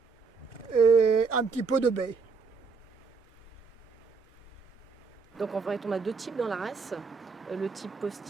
et un petit peu de bay. Donc en fait, on a deux types dans la race. Le type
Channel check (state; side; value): quieter; left; 5.0 dB